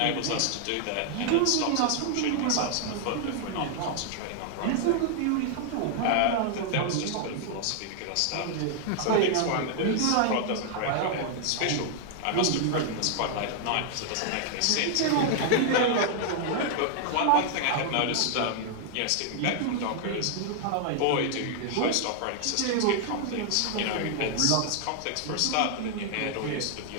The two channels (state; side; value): different; both; correlation 0.00